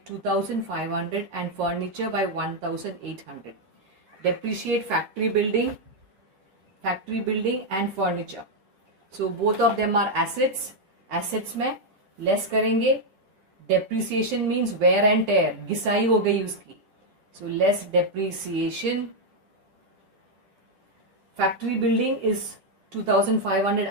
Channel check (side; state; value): left; late; 11 ms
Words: 2,500 and furniture by 1,800. Depreciate factory building and furniture. So both of them are assets. Assets में less करेंगे. Depreciation means wear and tear, घिसाई हो गई उसकी. So less depreciation. Factory building is 2500